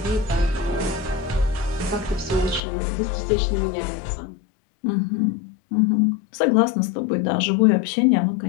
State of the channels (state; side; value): drops out; right; at 2.6 s